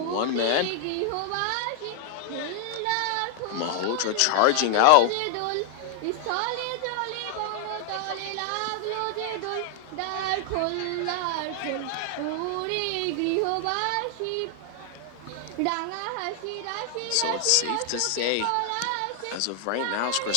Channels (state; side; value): different; both; correlation 0.00